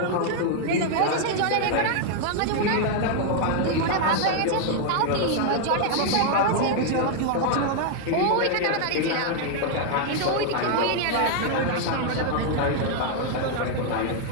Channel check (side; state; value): both; different; correlation 0.00